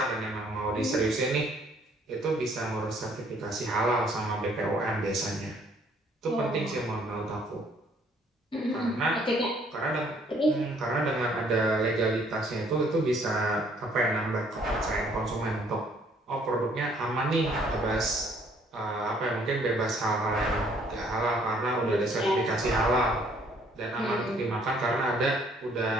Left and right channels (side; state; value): both; normal; correlation 0.62